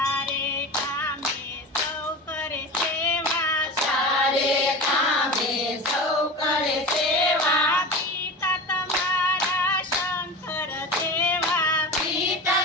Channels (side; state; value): both; normal; correlation 0.30